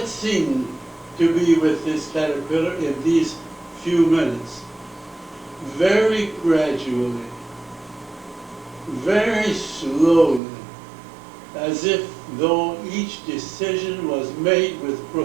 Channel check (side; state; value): left; drops out; at 10.4 s